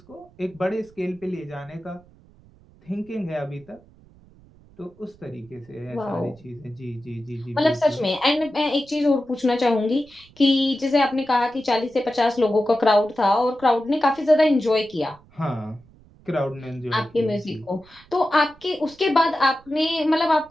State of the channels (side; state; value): right; noise; rumble, 27 dB below the sound